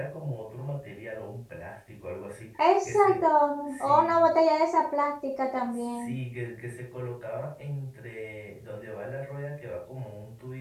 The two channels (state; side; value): identical; both; correlation 1.00